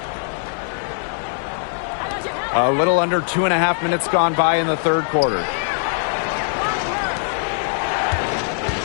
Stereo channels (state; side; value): silent; right; 61 dB below the other